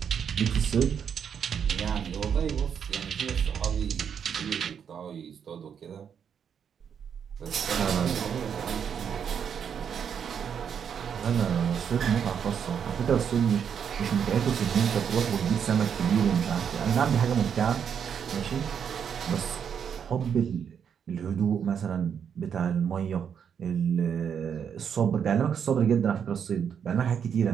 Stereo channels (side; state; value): left; quieter; 7.7 dB